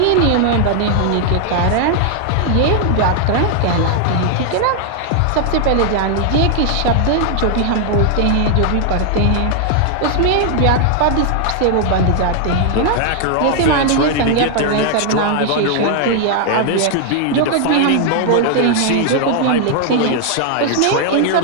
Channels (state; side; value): different; both; correlation 0.00